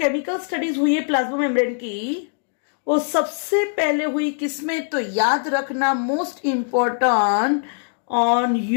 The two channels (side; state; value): right; silent; digital silence